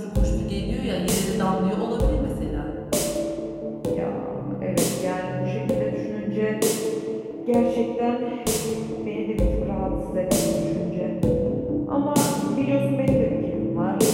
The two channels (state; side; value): identical; both; correlation 1.00